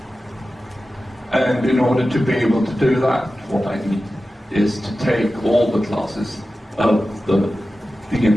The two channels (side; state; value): both; normal; correlation 0.94